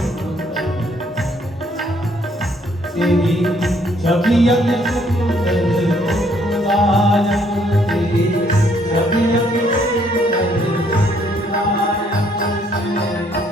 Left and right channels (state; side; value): normal; both; correlation 0.67